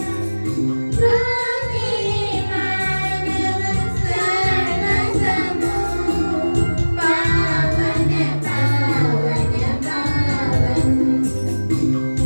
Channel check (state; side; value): inverted; both; correlation -1.00